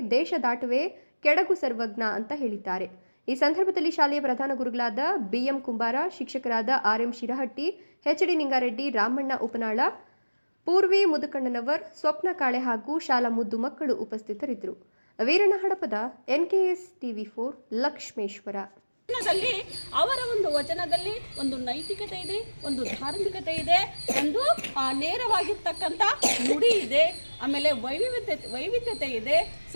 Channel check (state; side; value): inverted; both; correlation -1.00